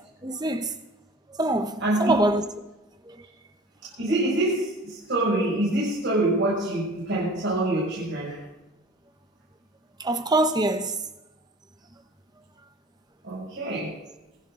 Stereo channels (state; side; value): normal; both; correlation 0.45